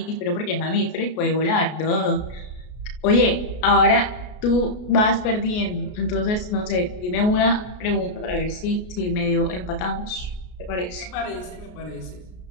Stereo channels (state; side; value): late; right; 33 ms